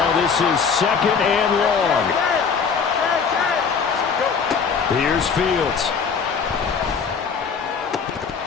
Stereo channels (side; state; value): right; quieter; 5.9 dB